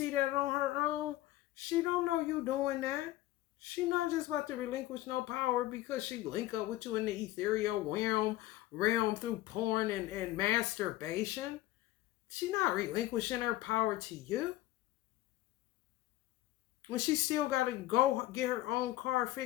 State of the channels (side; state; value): right; quieter; 16.1 dB